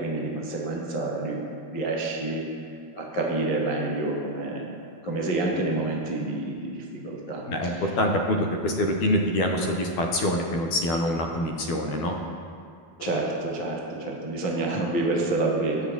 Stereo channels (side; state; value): right; late; 12 ms